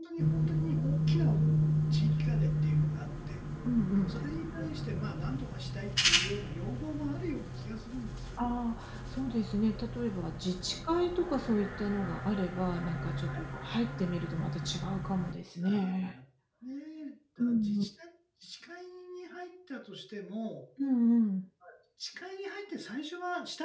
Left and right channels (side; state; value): both; identical; correlation 1.00